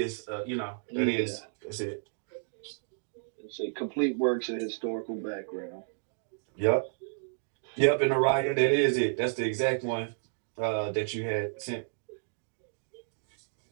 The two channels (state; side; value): silent; left; digital silence